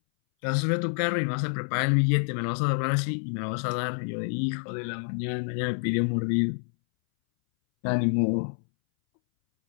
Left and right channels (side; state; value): right; silent; 60 dB below the other